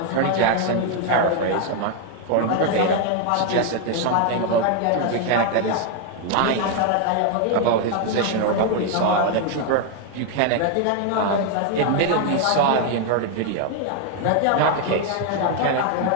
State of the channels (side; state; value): both; different; correlation 0.00